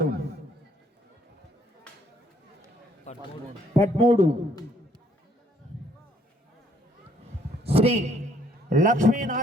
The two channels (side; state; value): both; normal; correlation 0.65